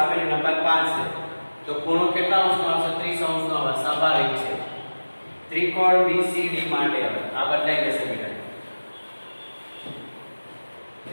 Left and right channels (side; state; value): both; inverted; correlation -1.00